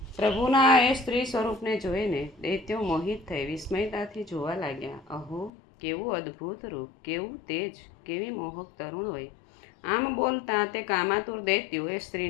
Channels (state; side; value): drops out; right; at 5.5 s